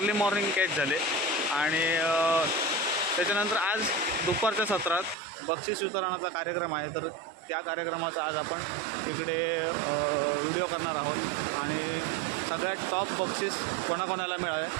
मॉर्निंग कॅच झाले आणि त्याच्यानंतर आज दुपारच्या सत्रात बक्षीस वितरणाचा कार्यक्रम आहे. तर त्या कार्यक्रमाचा आज आपण इकडे व्हिडिओ करणार आहोत आणि सगळ्यात टॉप बक्षीस कोणाकोणाला मिळाले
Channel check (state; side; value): drops out; left; at 5.2 s